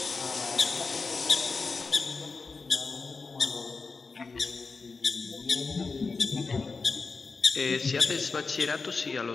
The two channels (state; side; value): quieter; right; 4.4 dB